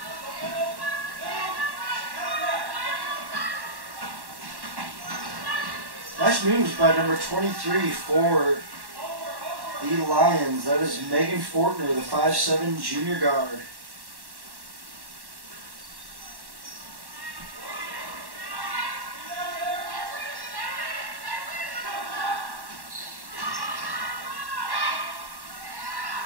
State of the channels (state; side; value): late; left; 1.1 ms